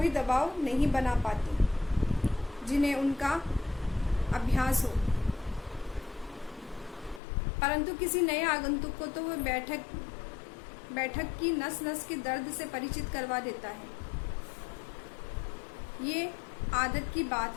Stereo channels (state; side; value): drops out; right; at 7.2 s